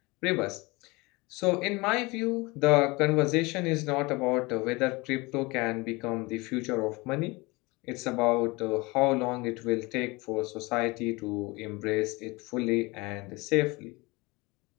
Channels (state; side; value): quieter; right; 24.3 dB